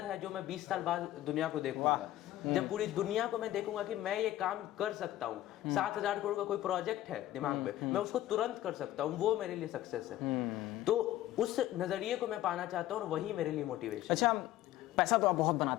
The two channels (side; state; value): right; quieter; 14.2 dB